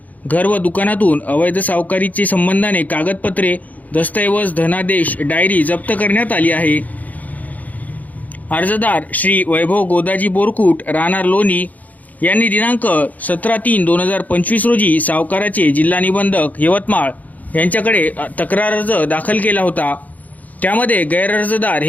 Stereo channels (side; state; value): right; late; 0.078 ms